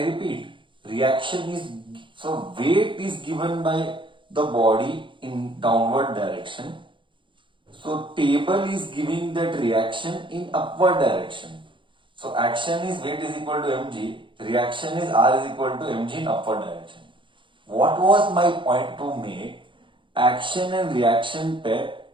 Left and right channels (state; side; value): late; left; 0.24 ms